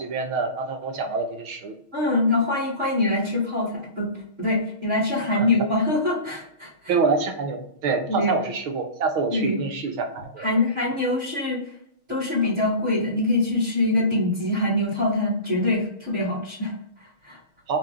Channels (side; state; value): left; late; 6.4 ms